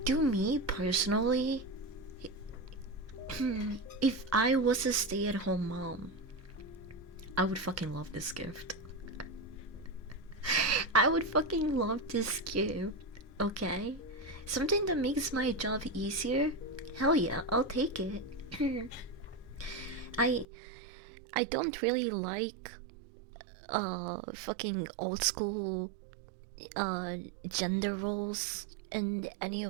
to me personally, if I was a stay-at-home mom, I would fucking love this gift. I would fucking love this gift. Okay? Something that makes my job easier? Hell yeah, I'll take it. I I don't really like fucking old school gender roles and any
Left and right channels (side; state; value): left; drops out; at 20.5 s